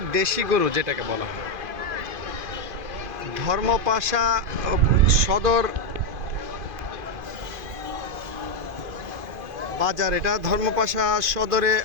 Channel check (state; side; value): late; left; 2.5 ms